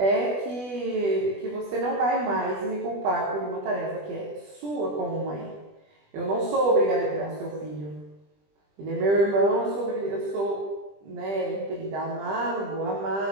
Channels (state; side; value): late; left; 20 ms